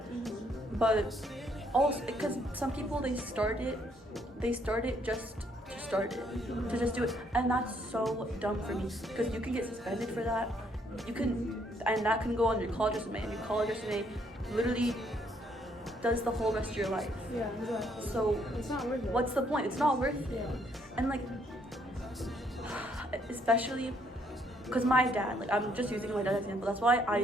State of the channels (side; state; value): both; normal; correlation 0.69